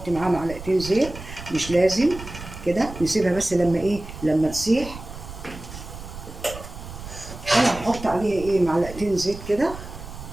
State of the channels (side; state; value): right; noise; rumble, 12 dB below the sound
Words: معاها معلقتين زيت مش لازم كده، نسيبها بس لما ايه لما تسيح. انا هحط عليها ايه معلقتين زيت كده،